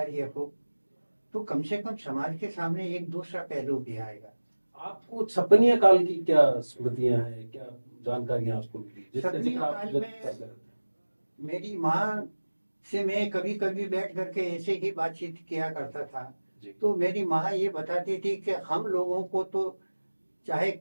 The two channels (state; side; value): inverted; both; correlation -1.00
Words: हो तो कम से कम समाज के सामने एक दूसरा पहलू भी आएगा। आपको छपनिया काल की क्या स्मृतियां हैं, क्या जानकारियां आपको मिली? छपनिया काल में मेरी माँ से मैं कभी कभी बैठ करके ऐसे ही बातचीत किया करता था, तो मेरी माँ ये बताती थी कि हम लोगों को तो चाहे